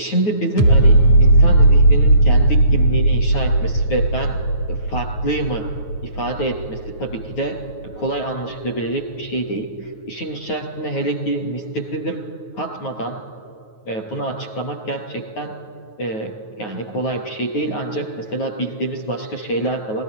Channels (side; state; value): right; late; 9.4 ms